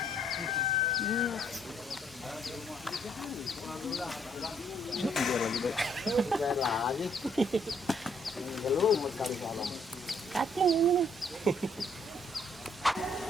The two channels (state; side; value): noise; left; hum, 25 dB below the sound